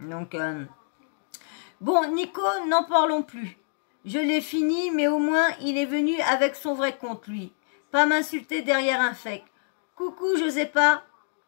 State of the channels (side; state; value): right; silent; digital silence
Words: bon, Nico, n'en parlons plus. Je l'ai fini, mais au moins, il est venu avec son vrai compte, lui. Pas m'insulter derrière un fake. Coucou, Josépa.